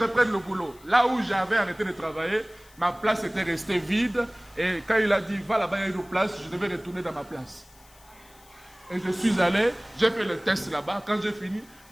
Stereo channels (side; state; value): left; noise; hiss, 26 dB below the sound